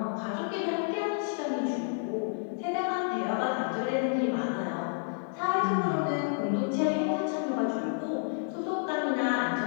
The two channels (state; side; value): silent; right; 58 dB below the other